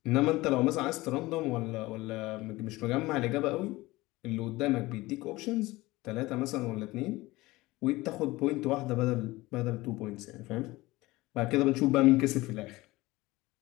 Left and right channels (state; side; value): quieter; right; 19.9 dB